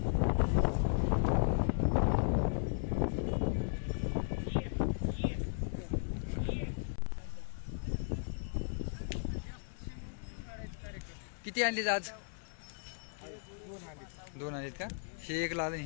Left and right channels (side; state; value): right; silent; 54 dB below the other